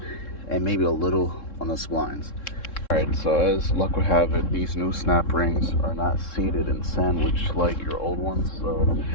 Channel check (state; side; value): late; right; 3.7 ms